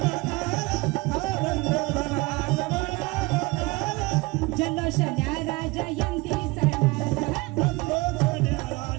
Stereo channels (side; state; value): left; quieter; 23.7 dB